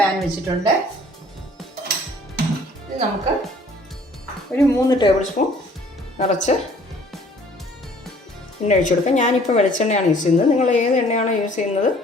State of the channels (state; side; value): normal; both; correlation 0.55